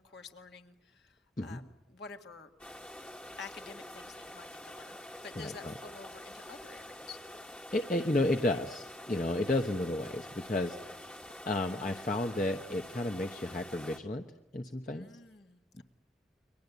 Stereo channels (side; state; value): both; normal; correlation 0.65